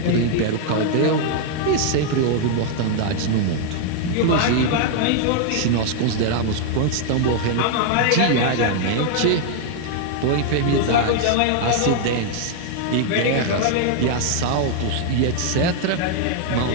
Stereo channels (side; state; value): both; different; correlation 0.00